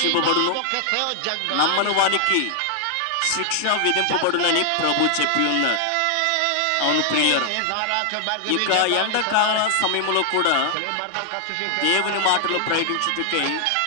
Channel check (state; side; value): different; both; correlation 0.00